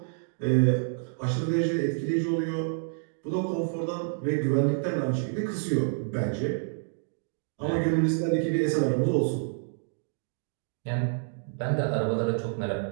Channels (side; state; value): left; silent; digital silence